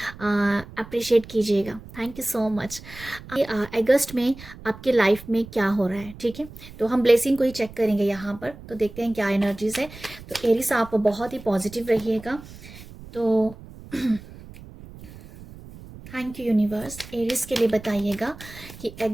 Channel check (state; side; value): noise; right; rumble, 17 dB below the sound